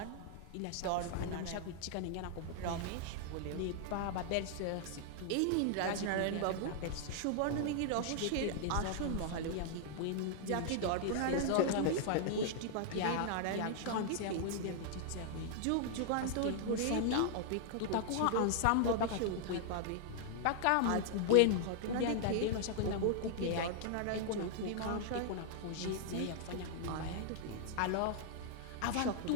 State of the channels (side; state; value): both; different; correlation 0.00